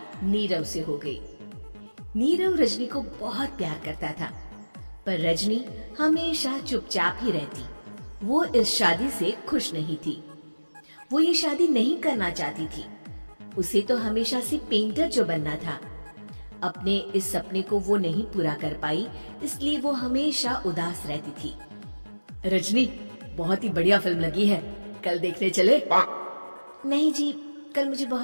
नीरव से हो गई। नीरव रजनी को बहुत प्यार करता था, पर रजनी हमेशा चुपचाप ही रहती। वो इस शादी से खुश नहीं थी। वो ये शादी नहीं करना चाहती थी। उसे तो हमेशा से पेंटर जो बनना था। अपने इस सपने को वो नहीं पूरा कर पाई, इसलिए वो हमेशा उदास रहती थी। रजनी, बहुत ही बढ़िया फिल्म लगी है, कल देखने चले? नहीं जी, कल मुझे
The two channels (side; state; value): both; inverted; correlation -1.00